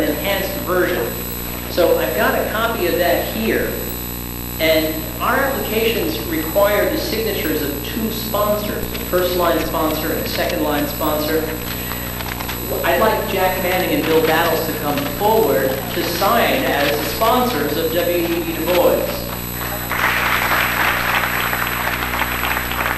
enhanced version. So I've got a copy of that here. And our applications require the signatures of 2 sponsors, a first-line sponsor and a second-line sponsor. I'd like Jack Manning and Bill Battles to come forward to sign as the sponsors of W.E.B. Du Bois.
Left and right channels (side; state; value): both; identical; correlation 1.00